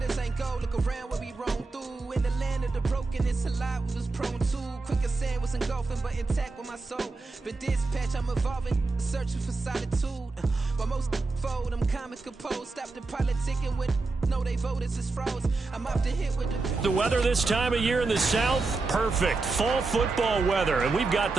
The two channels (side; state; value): left; quieter; 3.7 dB